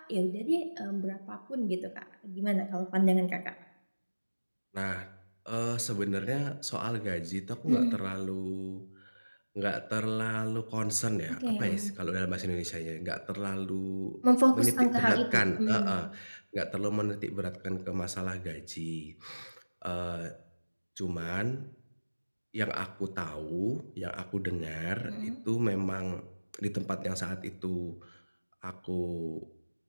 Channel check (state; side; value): inverted; both; correlation -1.00